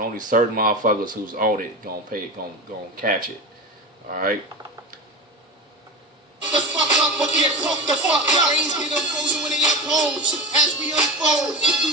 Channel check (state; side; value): normal; both; correlation 0.25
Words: only certain motherfuckers who's on it gonna catch it. Alright? The fuck up or get fucked the fuck up. Brains get unfrozen when they impose. As we unfold,